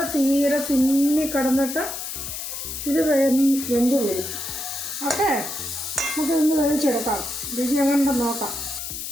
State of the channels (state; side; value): noise; left; hiss, 6 dB below the sound